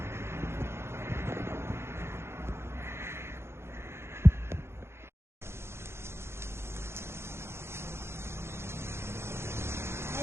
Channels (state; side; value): late; left; 0.12 ms